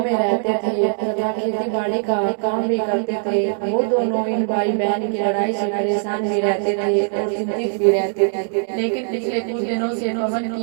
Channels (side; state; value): left; silent; digital silence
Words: रहते थे तथा खेती बाड़ी का काम भी करते थे। वो दोनों इन भाई बहन की लड़ाई से परेशान भी रहते थे और चिंतित भी रहते थे। लेकिन पिछले कुछ दिनों से पवन